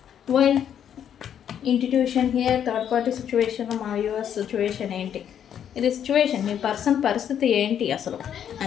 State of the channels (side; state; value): right; quieter; 9.2 dB